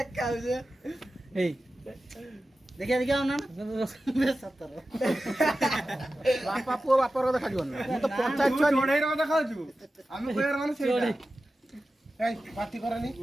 ଏଇ ଦେଖିଆ ନା ବାପା ପୁଅ ବାପାର ଦେଖାଯିବ ନା ମୁଁ ତ ପଞ୍ଚାୟତ ଛୁଆ ଚଢେଇର ଦେଖାଉଛୁ ଆମେ କହିବାର ମାନେ ସେଇଟା ଏଇ ପାଟି କରନି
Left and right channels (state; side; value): normal; both; correlation 0.94